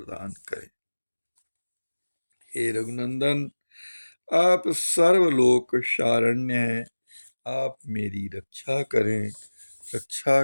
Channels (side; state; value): both; inverted; correlation -1.00